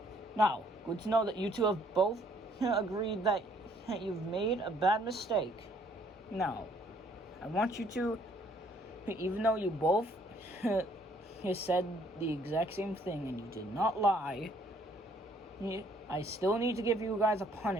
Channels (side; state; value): both; normal; correlation 0.63